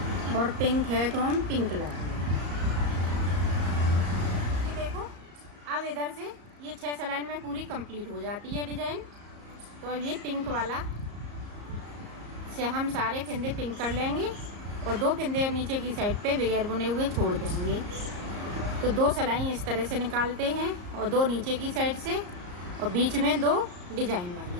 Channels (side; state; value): left; late; 34 ms